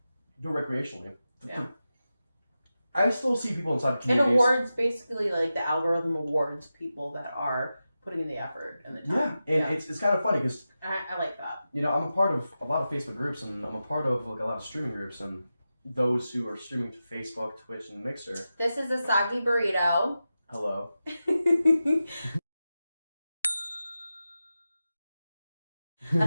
do it recreationally. Yeah. I still see people inside communities. It awards, basically, like, the algorithm awards people that are putting in the effort and the time. Yeah, and it's kind of funny because... I like that. You know, I'm a part of a lot of Facebook groups, and I'm a part of, like, a lot of streaming groups, and those who are streaming to Facebook, Twitch, and Mixer. This is Asoggyburrito. Hello.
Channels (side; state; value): both; inverted; correlation -0.92